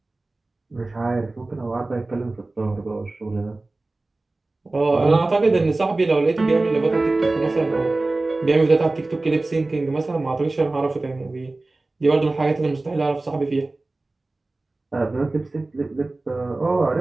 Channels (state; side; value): quieter; left; 3.1 dB